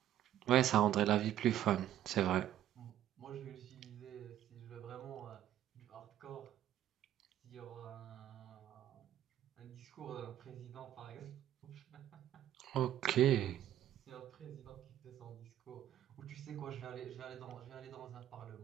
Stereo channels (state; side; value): quieter; left; 11.9 dB